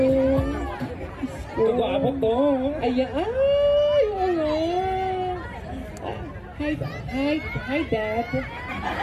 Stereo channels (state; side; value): identical; both; correlation 1.00